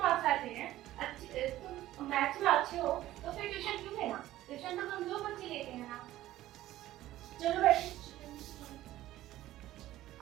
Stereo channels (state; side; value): quieter; left; 14.8 dB